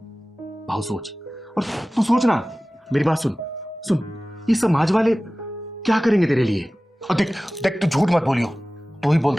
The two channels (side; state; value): both; normal; correlation 0.97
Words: भाऊ सोच, और तू सोच ना, मेरी बात सुन सुन, ये समाज वाले क्या करेंगे तेरे लिए? और देख देख तू झूठ मत बोलियो, तू ही